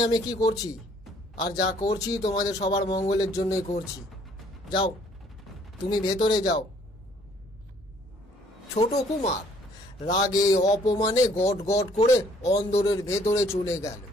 আমি কি করছি, আর যা করছি তোমাদের সবার মঙ্গলের জন্যই করছি। যাও, তুমি ভেতরে যাও। ছোট কুমার রাগে অপমানে গট গট করে অন্দরের ভেতরে চলে গেল।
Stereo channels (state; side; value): normal; both; correlation 0.61